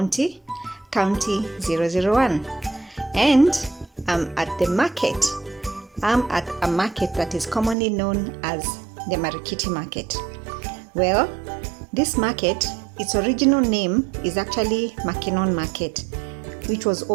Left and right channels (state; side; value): drops out; left; at 7.8 s